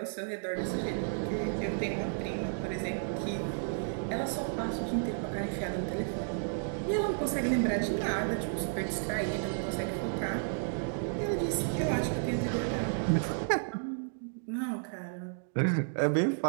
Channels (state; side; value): silent; left; digital silence